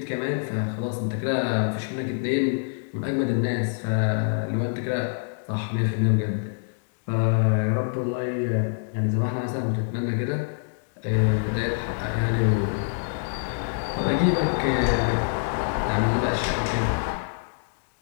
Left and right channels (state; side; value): silent; right; digital silence